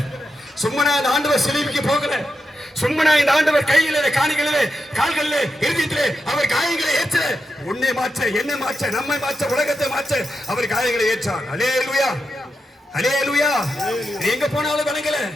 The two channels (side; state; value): both; normal; correlation 0.88